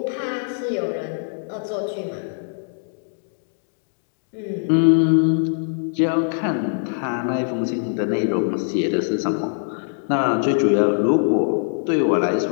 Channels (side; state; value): right; silent; digital silence